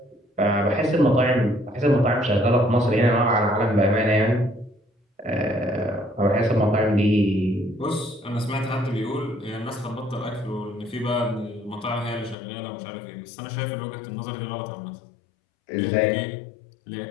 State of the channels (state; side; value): drops out; right; at 12.4 s